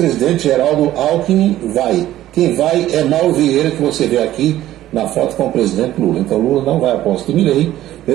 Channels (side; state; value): left; quieter; 13.9 dB